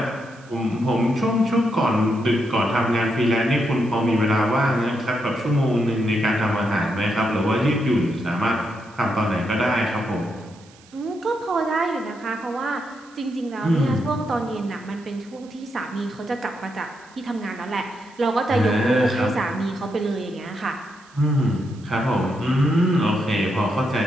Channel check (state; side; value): noise; right; hiss, 27 dB below the sound